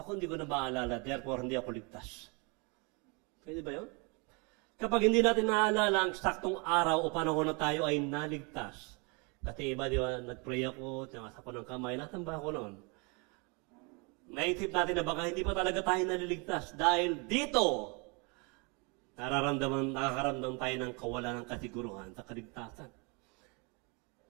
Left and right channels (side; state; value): left; quieter; 31.6 dB